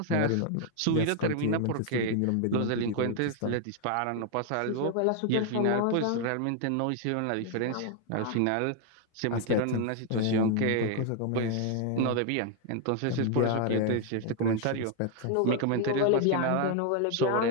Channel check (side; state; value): both; different; correlation 0.00